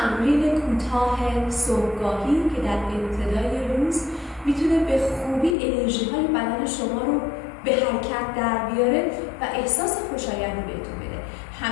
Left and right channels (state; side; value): drops out; right; at 5.6 s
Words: کوتاه صبحگاهی که در ابتدای روز میتونه به خوبی انرژی های بدن شما رو به حرکت در بیاره و احساس خوشایندی بهتون بده.